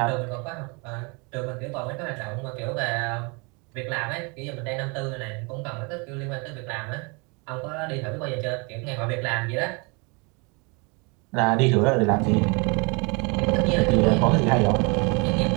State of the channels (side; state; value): left; quieter; 31.0 dB